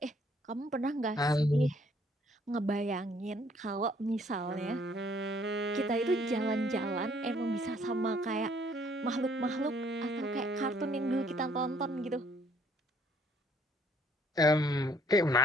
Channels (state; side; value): normal; both; correlation 0.62